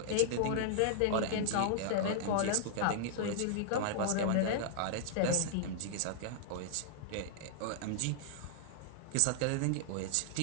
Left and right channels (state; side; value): different; both; correlation -0.01